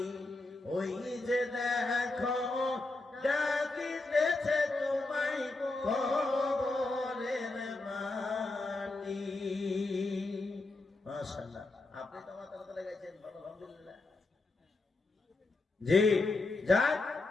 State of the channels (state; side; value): quieter; right; 3.2 dB